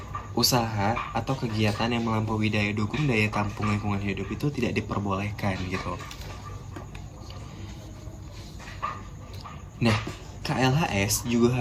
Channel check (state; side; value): identical; both; correlation 1.00